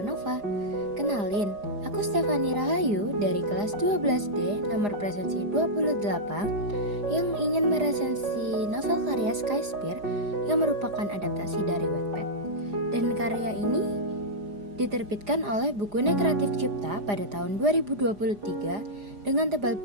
Nova. Kenalin, aku Stefani Rahayu dari kelas 12D nomor presensi 28 yang ingin meresensi novel karya Skyspear yang merupakan adaptasi dari Wattpad. Dan karya ini diterbitkan oleh Bukunya Kreatif Cipta pada tahun 2023 dengan tebal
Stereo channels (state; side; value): late; left; 4.9 ms